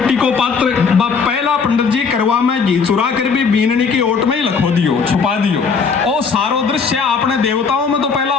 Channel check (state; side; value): quieter; right; 5.5 dB